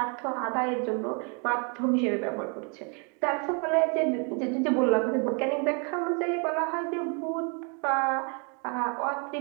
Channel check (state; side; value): quieter; left; 37.0 dB